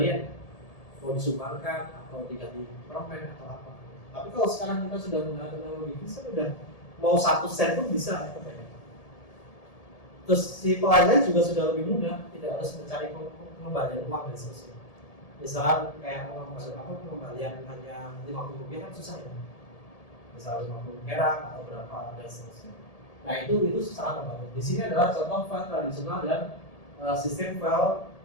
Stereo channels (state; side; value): late; right; 1.7 ms